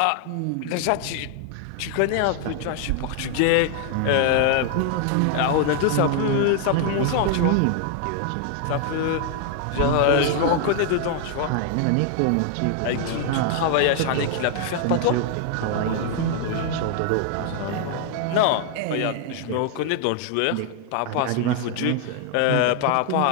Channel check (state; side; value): different; both; correlation 0.00